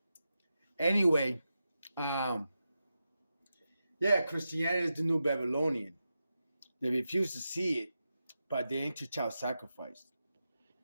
Anyway, um, yeah, Christianity is the new Babylonian. They refuse to see it, but they're into child sacrifice.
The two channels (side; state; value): both; inverted; correlation -0.90